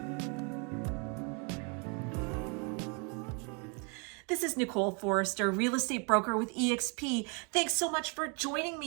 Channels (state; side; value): quieter; left; 34.2 dB